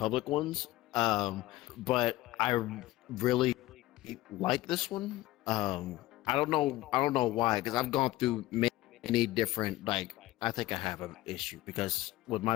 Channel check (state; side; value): quieter; right; 17.0 dB